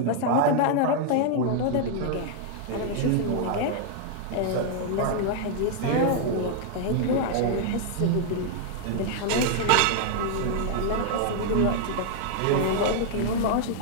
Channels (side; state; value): both; different; correlation 0.00